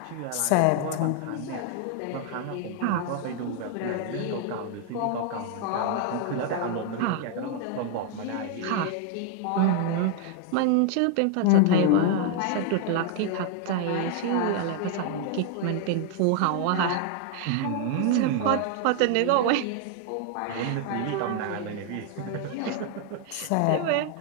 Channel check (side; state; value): both; different; correlation 0.00